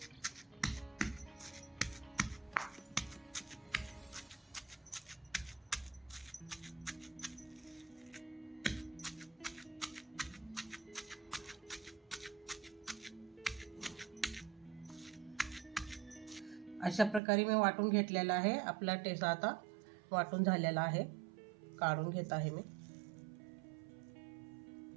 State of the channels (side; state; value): left; drops out; at 17.2 s